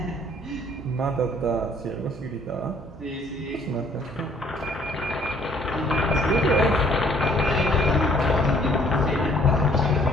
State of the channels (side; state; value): both; normal; correlation 0.60